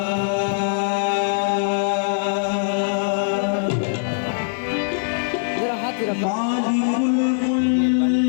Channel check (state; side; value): silent; right; digital silence